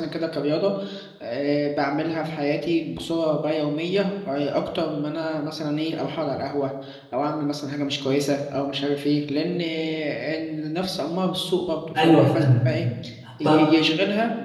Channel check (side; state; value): both; identical; correlation 1.00